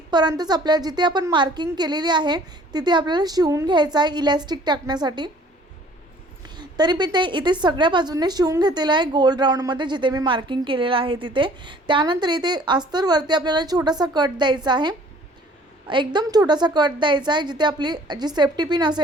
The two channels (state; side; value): normal; both; correlation 0.54